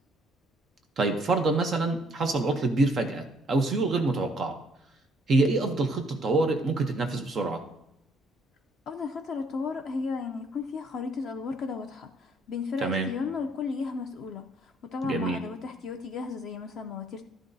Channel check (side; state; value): both; normal; correlation 0.65